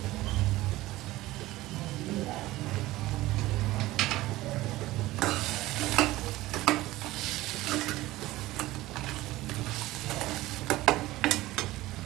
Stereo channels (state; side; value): quieter; left; 17.6 dB